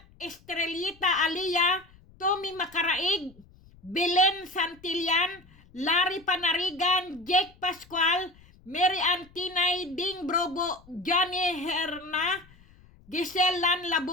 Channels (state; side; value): noise; left; rumble, 26 dB below the sound